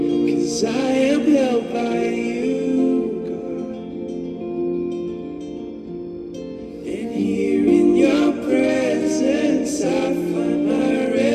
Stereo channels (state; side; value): identical; both; correlation 1.00